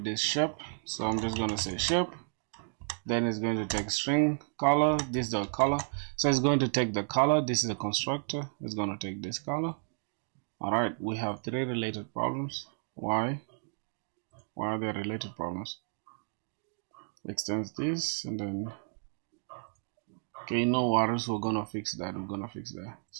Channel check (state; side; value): silent; left; 56 dB below the other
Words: this shape. So I'm just going to say shape. Then it's going to take string color. This is the color. So it's going to take the color. This is the constructor. It's going to take this color. Alright, we have 3 related problems. Why are there related problems? Extends this and then okay, no worries, we're gonna fix that.